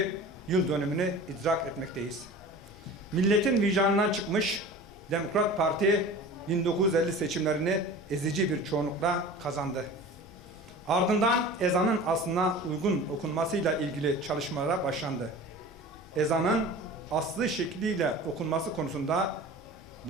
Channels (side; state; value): both; normal; correlation 0.38